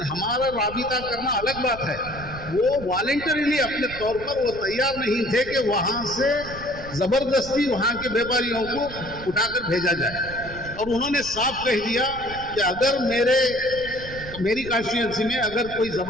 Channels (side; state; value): right; noise; rumble, 14 dB below the sound